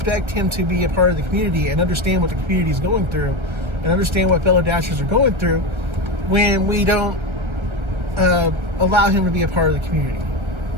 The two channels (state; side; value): late; left; 1.3 ms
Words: him to be a part of the community and understand what the community is going through and understand what fellow dashers are going through when we don't allow him to be a part of the community.